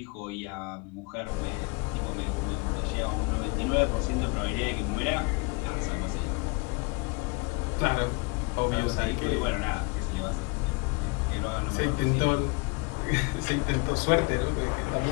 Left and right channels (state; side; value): quieter; right; 29.1 dB